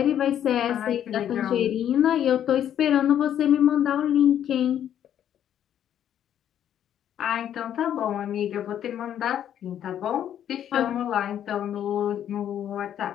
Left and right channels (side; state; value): right; quieter; 10.2 dB